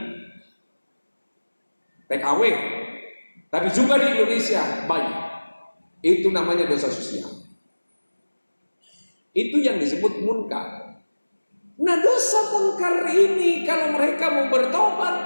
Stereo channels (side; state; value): both; inverted; correlation -1.00